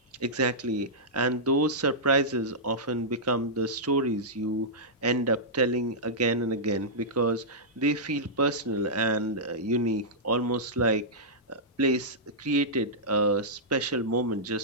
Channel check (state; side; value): normal; both; correlation -0.13